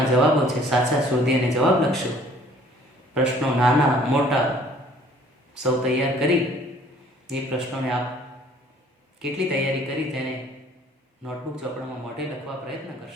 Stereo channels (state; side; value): normal; both; correlation 0.56